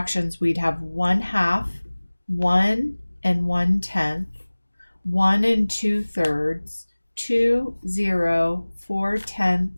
we'd have 1/2, 1 and 1/10, 1 and 2/3, 2, 0,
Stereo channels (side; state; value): both; inverted; correlation -1.00